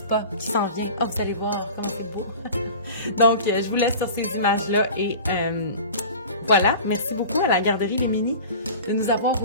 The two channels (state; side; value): inverted; both; correlation -0.38